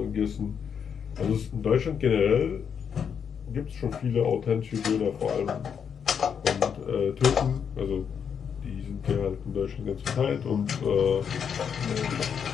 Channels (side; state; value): right; quieter; 7.3 dB